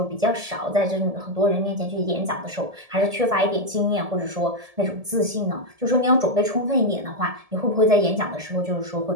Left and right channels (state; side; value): late; left; 1.7 ms